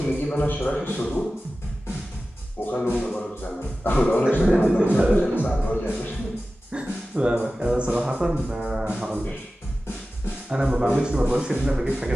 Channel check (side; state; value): both; normal; correlation 0.95